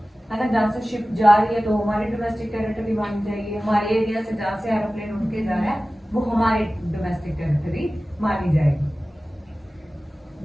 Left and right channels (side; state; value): both; normal; correlation 0.96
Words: है ना, जहाँ से शिप जा रही है तो हमारी डोमेस्टिक टेरिटरी मानी जाएगी। हमारे एरिया से जहाँ से एरोप्लेन उड़ के जा रहा है वो हमारी डोमेस्टिक टेरिटरी मानी जाएगी,